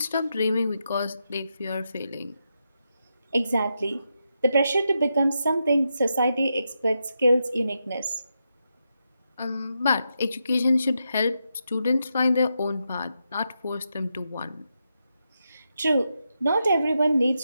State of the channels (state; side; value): inverted; both; correlation -0.85